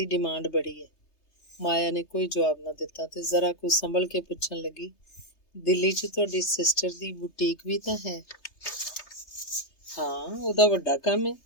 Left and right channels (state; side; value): late; right; 3.3 ms